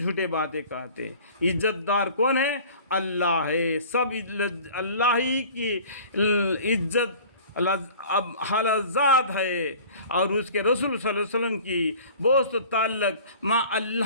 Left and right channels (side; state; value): both; inverted; correlation -0.45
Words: باتیں کہتے ہیں۔ عزت دار کون ہے؟ اللہ ہے، سب اللہ ہی کی عزت اب حالت ذات ہے اور اس کے رسول صلی اللہ علیہ وسلم کی دوست و تعلق مع